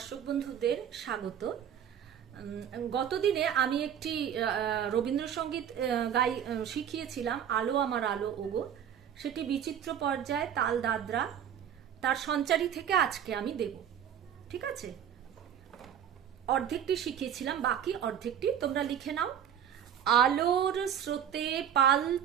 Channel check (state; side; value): quieter; left; 9.1 dB